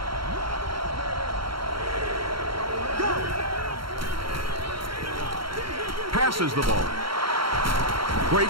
Passes the ball.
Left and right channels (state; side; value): late; left; 0.73 ms